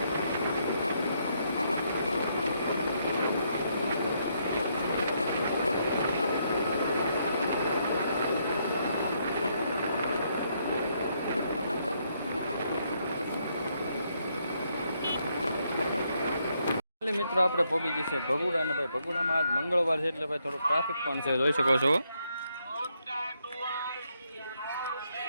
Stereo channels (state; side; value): inverted; both; correlation -0.75